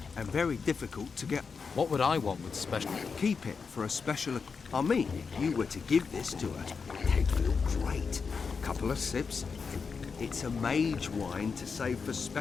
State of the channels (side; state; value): right; quieter; 5.3 dB